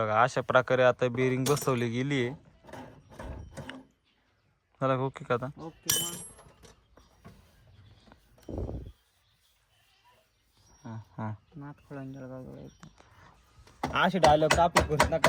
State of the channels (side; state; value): both; identical; correlation 1.00